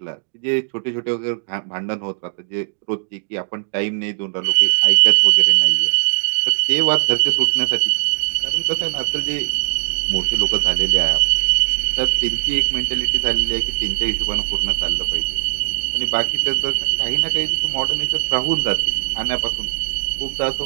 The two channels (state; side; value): silent; left; 66 dB below the other